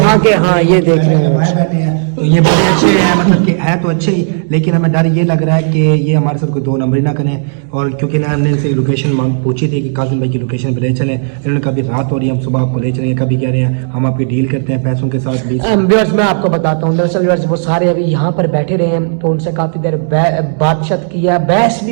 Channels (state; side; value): silent; left; digital silence